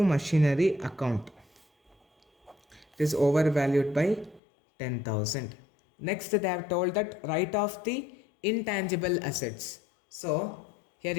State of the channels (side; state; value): right; drops out; at 4.4 s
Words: machinery account, it is overvalued by 10,000. Next they have told that write off the intangible assets. So here